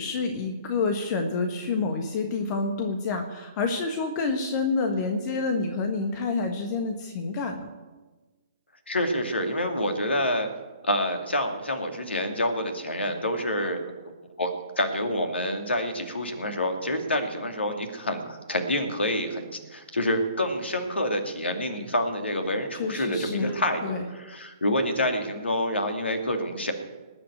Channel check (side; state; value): both; inverted; correlation -0.52